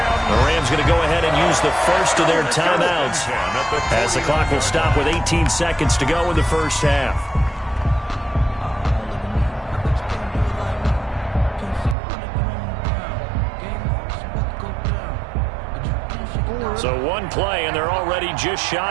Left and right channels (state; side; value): drops out; left; at 12.0 s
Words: The Rams going to go ahead and use the first of their timeouts as the clock will stop with 18 seconds to go in the first half. So one play, and they're already just